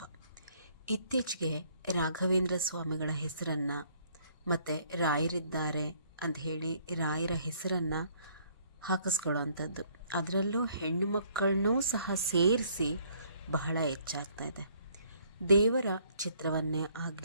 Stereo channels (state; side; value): inverted; both; correlation -0.64